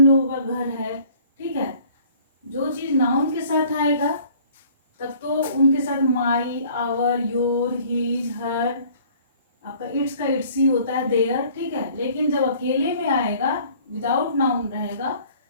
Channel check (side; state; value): both; inverted; correlation -0.54